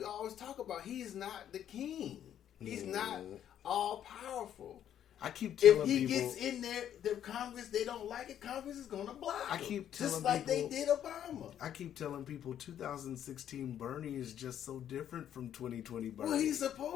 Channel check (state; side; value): quieter; right; 10.2 dB